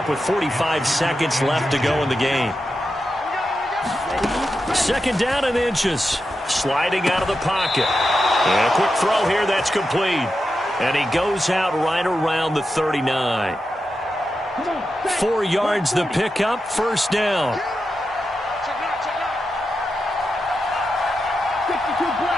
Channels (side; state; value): both; normal; correlation 0.89